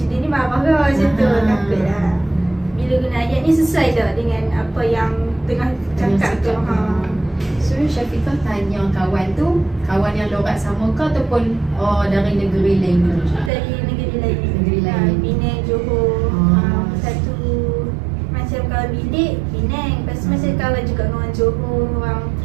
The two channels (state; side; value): drops out; left; at 13.5 s